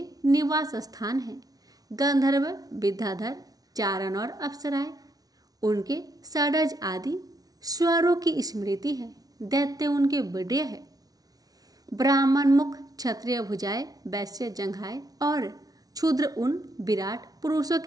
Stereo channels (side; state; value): left; late; 0.18 ms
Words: निवास स्थान है। गंधर्व, विद्याधर, चारण और अप्सराएं उनके षडज आदि स्वरों की स्मृति है। दैत्य उनके विडय है। ब्राह्मण मुख, क्षत्रिय भुजाएं, वैश्य जंघाएं और क्षुद्र उन विराट पुरुषों